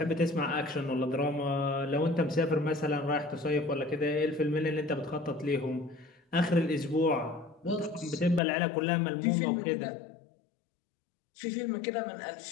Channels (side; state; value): right; drops out; at 8.4 s